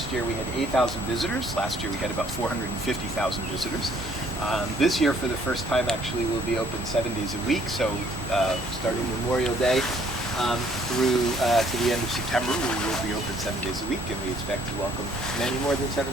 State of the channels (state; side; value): normal; both; correlation 0.63